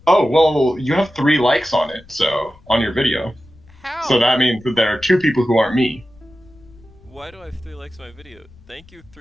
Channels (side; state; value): left; noise; rumble, 26 dB below the sound